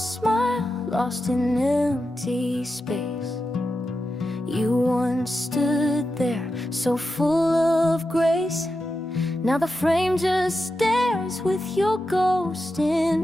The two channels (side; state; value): both; normal; correlation 0.89